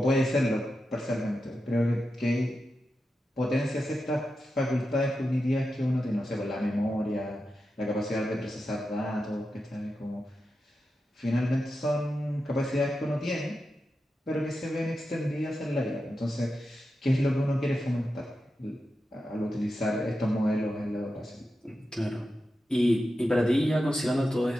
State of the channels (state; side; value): normal; both; correlation 0.90